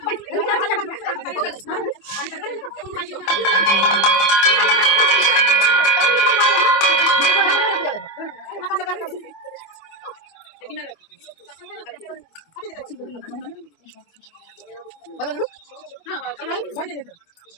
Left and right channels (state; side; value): late; right; 25 ms